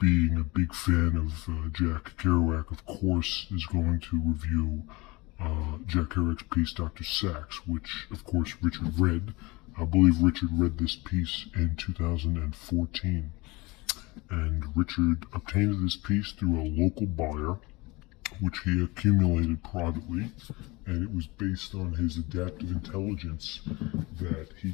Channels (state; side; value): quieter; right; 23.8 dB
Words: a big fan of Jack Kerouac, of course, is going to review Jack Kerouac's piece, Dr. Sax, which, of course, Richard read. I believe Richard read this piece in 2014, and Richard obtained this piece through a local buyer, which he accumulated privately, and it was based on his adaptive intelligence that he